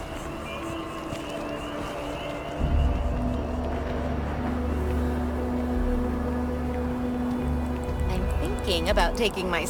About taking my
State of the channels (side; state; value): both; identical; correlation 1.00